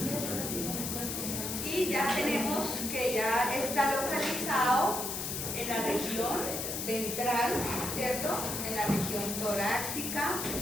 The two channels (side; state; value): left; noise; hiss, 3 dB below the sound